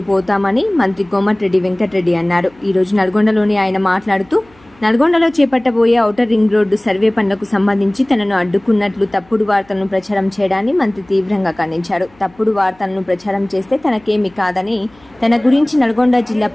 పోతామని మంత్రి కోమటిరెడ్డి వెంకటరెడ్డి అన్నారు. ఈ రోజు నల్గొండలోని ఆయన మాట్లాడుతూ నల్గొండలో చేపట్టబోయే ఔటర్ రింగ్ రోడ్డు సర్వే పనులకు సంబంధించి తనను అడ్డుకున్నట్లు తప్పుడు వార్తలను ప్రచారం చేయడాన్ని మంత్రి తీవ్రంగా ఖండించారు. తప్పుడు వార్తలను ప్రచారం చేస్తే తనకేమీ కాదని, తన గురించి నల్గొండ జిల్లా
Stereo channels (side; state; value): left; noise; hum, 30 dB below the sound